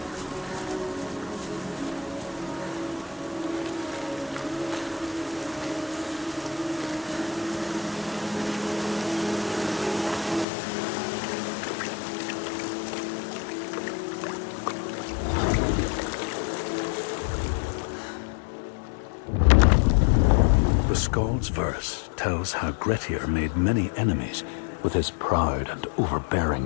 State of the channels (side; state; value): right; drops out; at 10.5 s